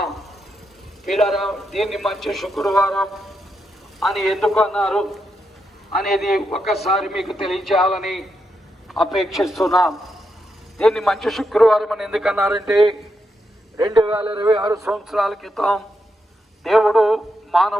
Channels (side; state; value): both; normal; correlation 0.83